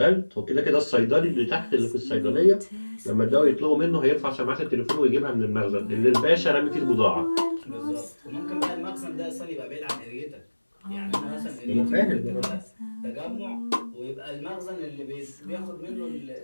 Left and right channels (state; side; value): inverted; both; correlation -1.00